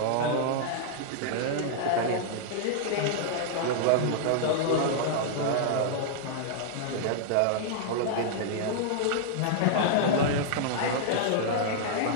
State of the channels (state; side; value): different; both; correlation -0.01